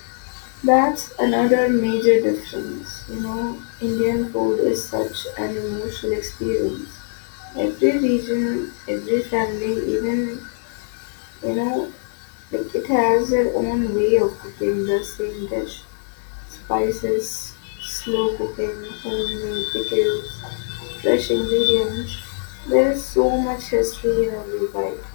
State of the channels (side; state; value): right; silent; digital silence